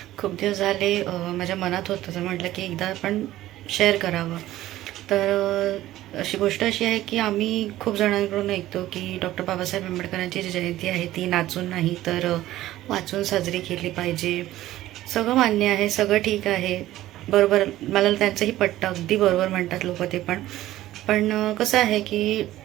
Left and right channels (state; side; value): quieter; left; 14.8 dB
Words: खूप दिवस झाले माझ्या मनात होतं, तर म्हटलं की एकदा आपण शेअर करावं. तर अशी गोष्ट अशी आहे की आम्ही खूप जणांकडून ऐकतो की डॉक्टर बाबासाहेब आंबेडकरांची जी जयंती आहे ती नाचून नाही तर वाचून साजरी केली पाहिजे. सगळं मान्य आहे, सगळं ठीक आहे, बरोबर, मला त्यांचंही पटतं, अगदी बरोबर म्हणतात लोक ते पण. पण कसं आहे की